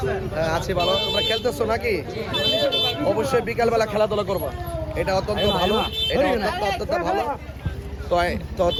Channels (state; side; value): identical; both; correlation 1.00